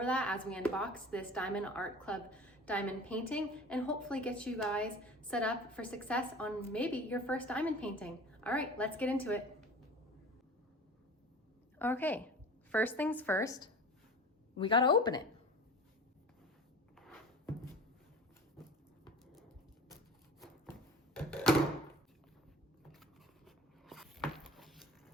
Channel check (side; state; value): both; normal; correlation 0.38